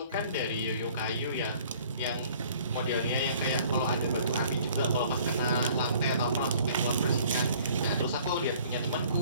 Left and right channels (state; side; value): inverted; both; correlation -0.54